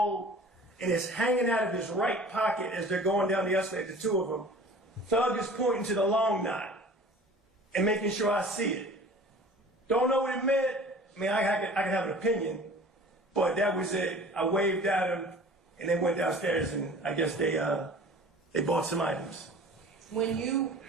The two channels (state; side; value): normal; both; correlation 0.45